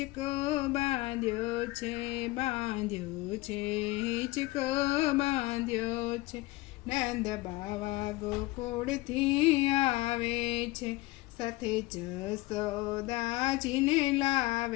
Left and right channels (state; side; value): quieter; right; 20.6 dB